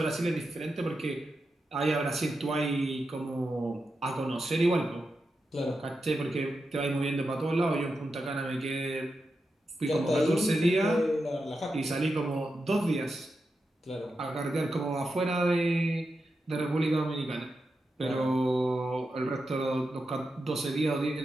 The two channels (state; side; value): normal; both; correlation 0.88